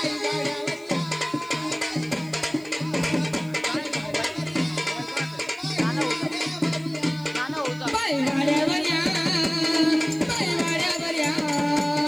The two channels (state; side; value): noise; left; hiss, 27 dB below the sound